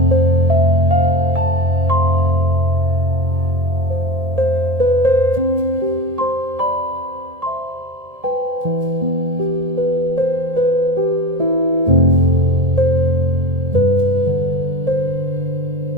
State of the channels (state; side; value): late; left; 1.7 ms